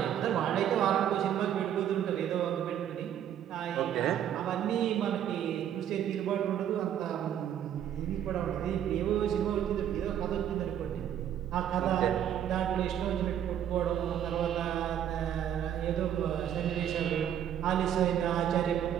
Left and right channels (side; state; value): left; quieter; 10.0 dB